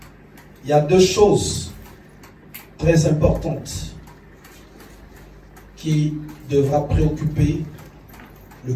Il y a deux choses très importantes qui devra préoccuper le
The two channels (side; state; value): both; identical; correlation 1.00